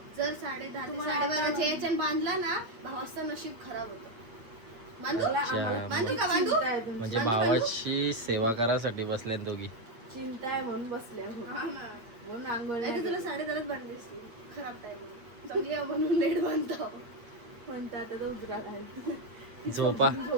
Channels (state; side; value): late; left; 8.5 ms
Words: जर 10:30 ते 12:30च्या याच्यात बांधला ना, भावाचं नशीब खराब होतं. बांधू का बांधू? म्हणजे भावाची सेवा करासाठी बसल्यात दोघी. चिंता आहे म्हणून बसल्या म्हणून आंघोळ नाही तर तुला 10:30च बांधली असती. खराब टाइम चांगली आहे म्हणून लेट बांधतो. म्हणतात आता तर उजरा घाल.